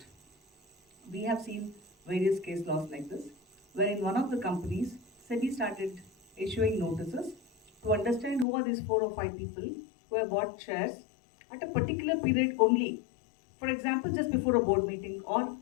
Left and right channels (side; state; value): right; drops out; at 8.5 s